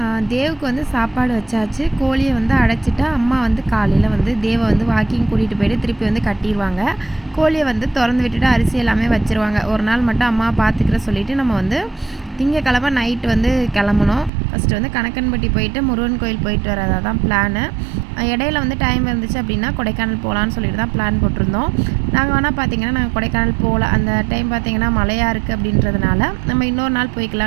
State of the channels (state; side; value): drops out; left; at 14.3 s